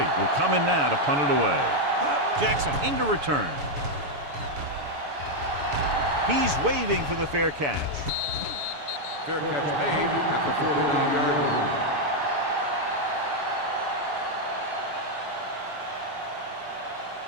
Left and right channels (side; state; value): left; late; 7.0 ms